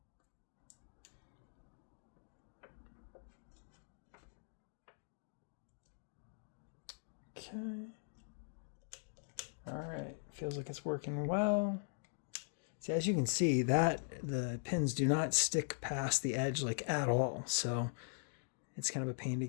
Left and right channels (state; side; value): silent; right; digital silence